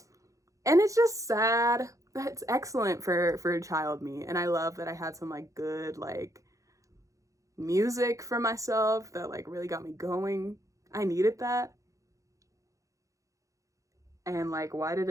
And it's just sad. It's excellent for child me, and I love that I had some like good like music for myself that like really got me going. I needed that. And like, why did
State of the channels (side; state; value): left; late; 0.16 ms